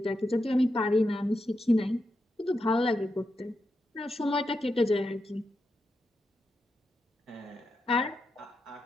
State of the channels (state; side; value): normal; both; correlation 0.86